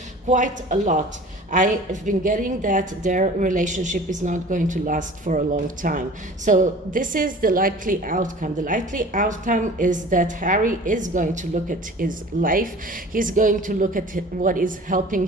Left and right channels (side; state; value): both; normal; correlation 0.43